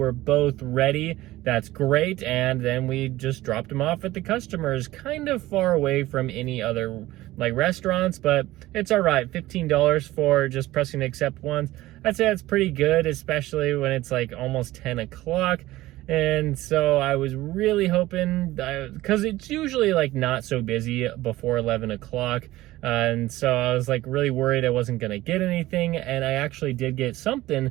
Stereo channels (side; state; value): left; quieter; 17.0 dB